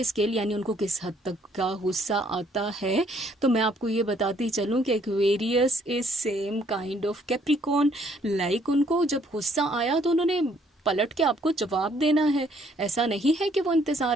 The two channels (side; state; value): both; normal; correlation 0.65